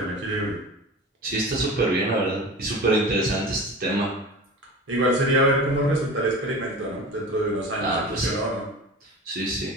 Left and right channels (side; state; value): both; normal; correlation 0.34